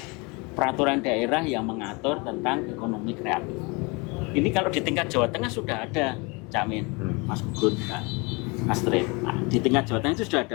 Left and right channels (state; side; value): quieter; right; 28.4 dB